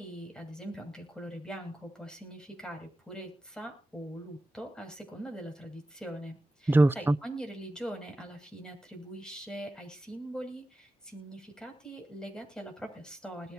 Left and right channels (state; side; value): normal; both; correlation 0.93